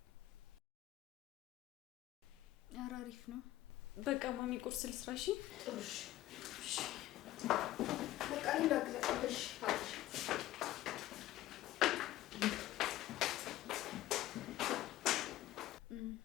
ኧረ አሪፍ ነው። በቃ ማሚ ቁርስ ልስራ። እሺ ጥሩሽ በቃ እንዳግዘሽ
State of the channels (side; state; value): right; quieter; 15.3 dB